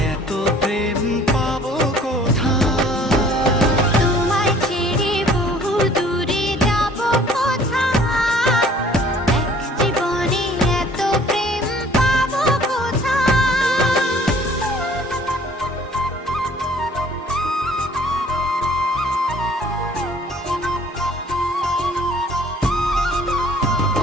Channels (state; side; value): normal; both; correlation 0.54